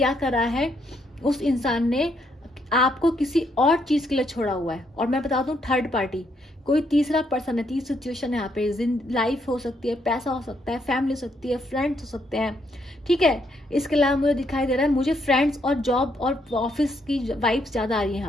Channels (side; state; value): both; normal; correlation 0.74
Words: करा है, उस इंसान ने आपको किसी और चीज के लिए छोड़ा हुआ है। और मैं बता दूं, थर्ड पार्टी, कोई तीसरा पर्सन है, तीसरी सिचुएशन है यहाँ पे। लाइफ हो सकती है, पैसा हो सकता है, फैमिली हो सकती है, फ्रेंड्स हो सकते हैं, ठीक है। इसके अलावा मुझे दिखाई दे रहा है, मुझे फ्रेंड्स और जॉब और ऑफिस की वाइब्स ज्यादा आ रही है